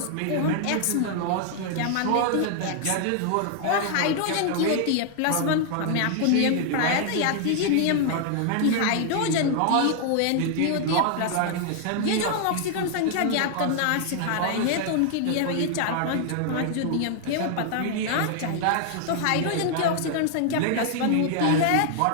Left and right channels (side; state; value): both; different; correlation 0.00